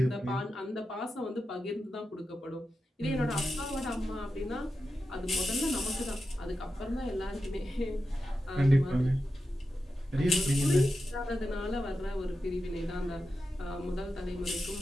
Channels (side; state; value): both; normal; correlation 0.90